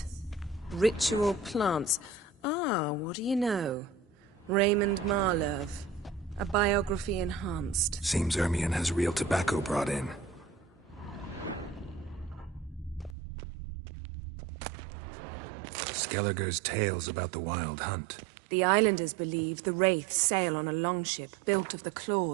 Ritual plants. Ah, what do you know? Raymond Marlove. A biography enhanced. Seems Ermion has real tobacco brought in. Skelliger's tales about the wild hunt. The islanders believe the wraiths sail on a longship built of the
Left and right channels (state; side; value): drops out; left; at 13.2 s